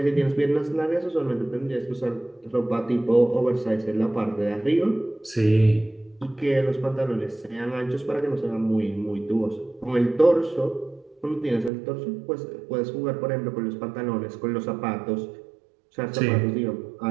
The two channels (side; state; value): left; drops out; at 11.7 s